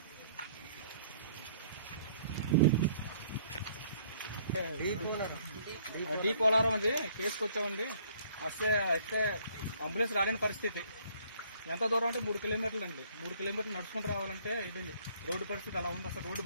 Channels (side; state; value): both; inverted; correlation -0.60